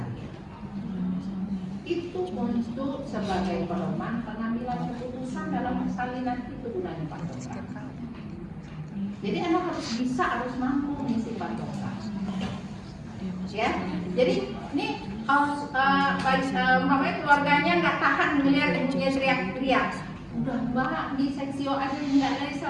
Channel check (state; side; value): identical; both; correlation 1.00